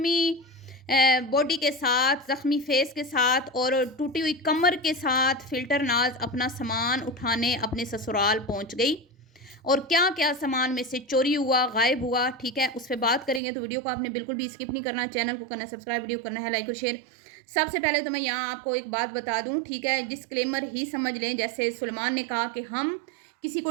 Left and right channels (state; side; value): drops out; left; at 13.4 s